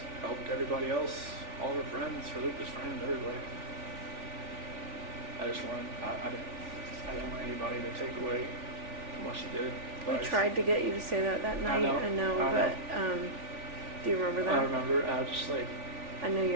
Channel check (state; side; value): late; left; 3.4 ms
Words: helped everybody else, all her friends, her Lucas friends, everybody. I just wanted, I didn't want anybody to take away from what she did. We tried to get you to say that night. know, I know, I but do you remember that? I remember, I was just like, I know